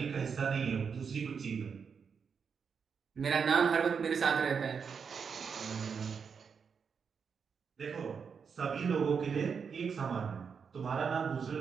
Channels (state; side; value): quieter; left; 6.2 dB